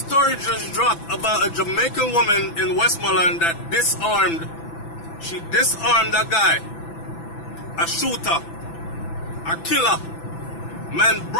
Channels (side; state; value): right; late; 6.0 ms